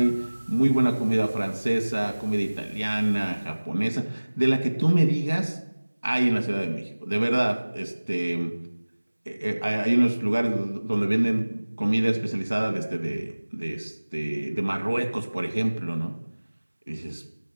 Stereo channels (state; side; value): inverted; both; correlation -1.00